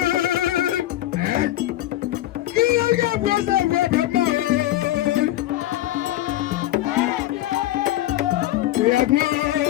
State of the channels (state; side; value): quieter; right; 14.8 dB